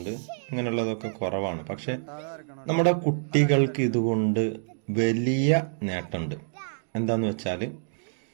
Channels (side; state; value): left; silent; digital silence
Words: ഇങ്ങനെയുള്ളതൊക്കെ കുറവാണ്. പക്ഷെ നമ്മുടെ കുട്ടികൾക്ക് ഇതുകൊണ്ട് വലിയ നേട്ടമുണ്ട്. എന്താന്ന് വെച്ചാല്